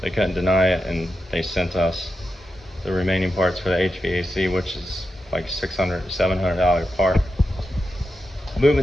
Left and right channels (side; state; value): both; normal; correlation 0.88